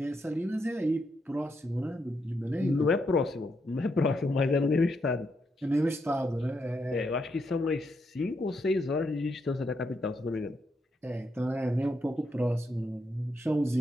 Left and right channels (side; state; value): both; normal; correlation 0.80